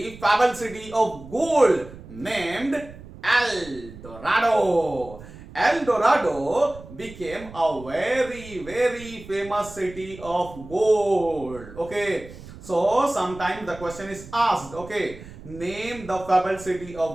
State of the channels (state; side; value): noise; right; rumble, 17 dB below the sound